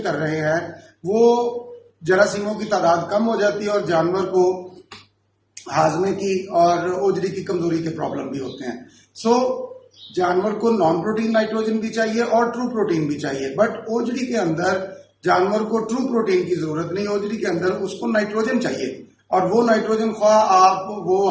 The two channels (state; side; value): identical; both; correlation 1.00